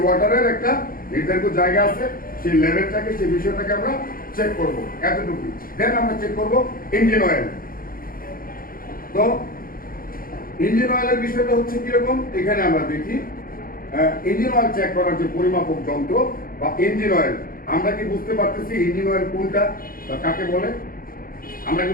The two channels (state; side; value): late; right; 0.42 ms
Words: ওয়াটারের একটা নির্ধারিত জায়গা আছে, সেই লেভেলটাকে, সেই বিষয়টাকে আমরা চেক করবো, এতটুকু। দেন আমরা চেক করবো ইঞ্জিন অয়েল। তো ইঞ্জিন অয়েলের বিষয়টা হচ্ছে কিরকম, এখানে আমরা দেখি ইঞ্জিন অয়েল চেক করার যে পরিমাপক যন্ত্র বা ইঞ্জিন অয়েল, আমরা কি বুঝতে পারতেছি ইঞ্জিন অয়েল কোনটা বা কাকে বলে? আমরা